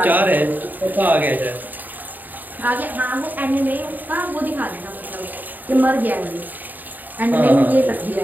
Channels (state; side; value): late; left; 0.086 ms